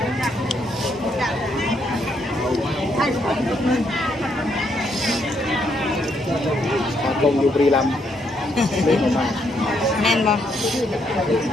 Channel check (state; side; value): normal; both; correlation 0.74